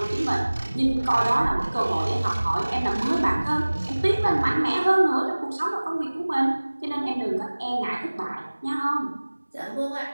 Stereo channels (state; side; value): inverted; both; correlation -1.00